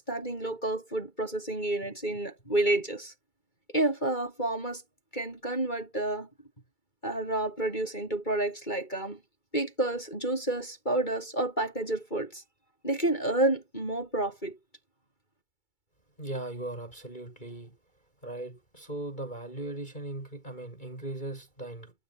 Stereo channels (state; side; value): late; right; 2.3 ms